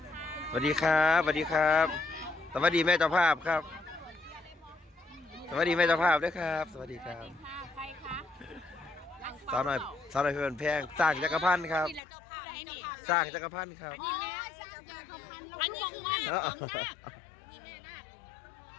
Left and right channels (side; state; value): right; drops out; at 12.0 s